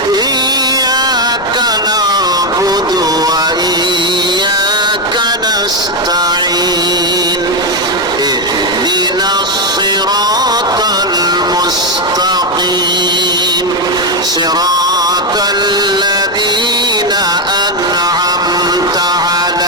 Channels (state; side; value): normal; both; correlation 0.06